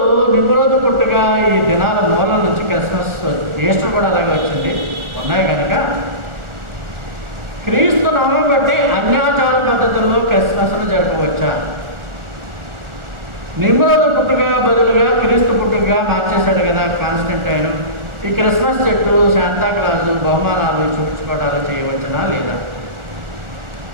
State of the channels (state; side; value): late; left; 1.4 ms